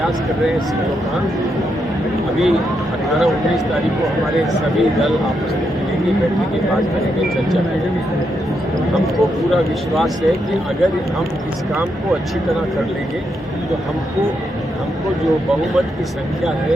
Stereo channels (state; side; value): normal; both; correlation 0.81